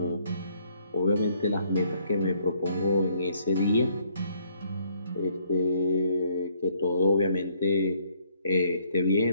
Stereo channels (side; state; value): both; inverted; correlation -0.66